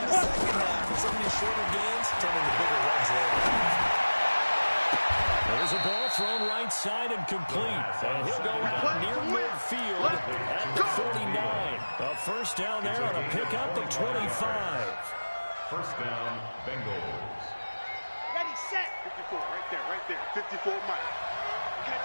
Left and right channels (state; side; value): inverted; both; correlation -1.00